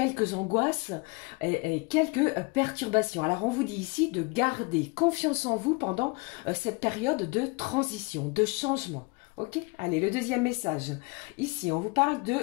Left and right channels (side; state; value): right; quieter; 28.4 dB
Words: angoisses et quelques perturbations. Alors, on vous dit ici de garder confiance en vous pendant cette période de transition, de changement. Ok, allez, le deuxième message. Ici, on vous parle